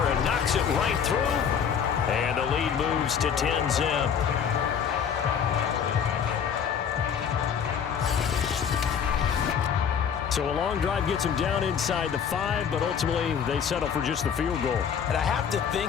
knocks it right through. And the lead moves to 10-zip. So a long drive gets them down inside the 5, but ultimately they settle for just the field goal. And I have to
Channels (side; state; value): right; quieter; 7.5 dB